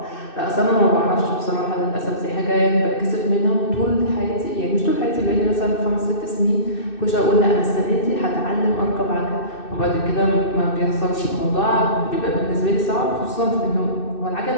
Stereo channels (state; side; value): late; right; 2.6 ms